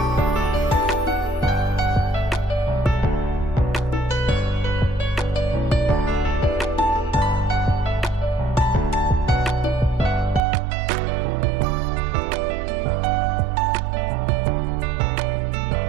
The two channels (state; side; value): drops out; left; at 10.4 s